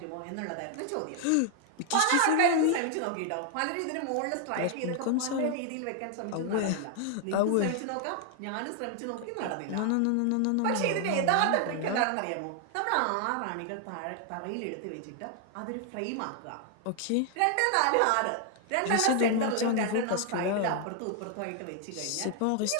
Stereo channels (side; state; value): both; different; correlation 0.00